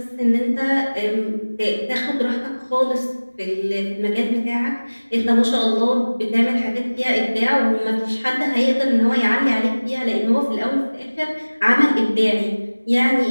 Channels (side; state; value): both; inverted; correlation -1.00